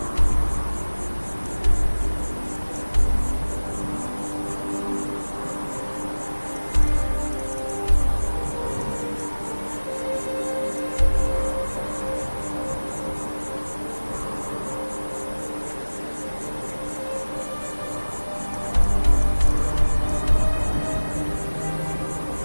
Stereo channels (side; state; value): both; inverted; correlation -1.00